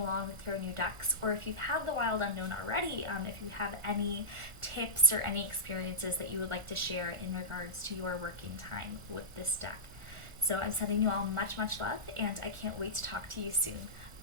with your new decks, or if you've had the Wild Unknown already, if you have any tips or any experiences that you would like to share in regards to your working time with this deck. So I'm sending you all much, much love, and I can't wait to talk to you soon.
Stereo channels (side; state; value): left; late; 1.4 ms